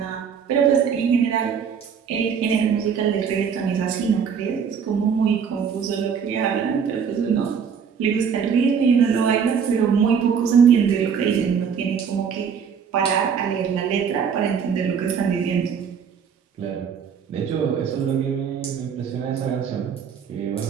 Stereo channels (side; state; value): left; quieter; 6.9 dB